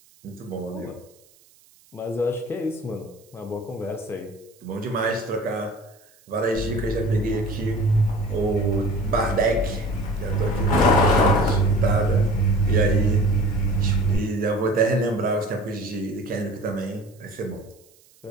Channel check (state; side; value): noise; right; hiss, 30 dB below the sound